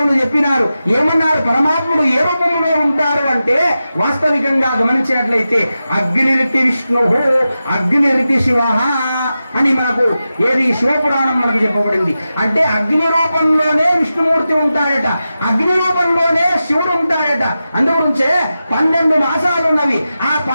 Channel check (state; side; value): inverted; both; correlation -0.92